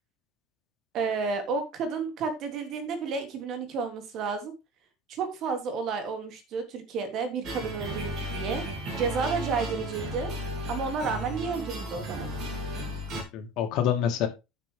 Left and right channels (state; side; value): normal; both; correlation 0.37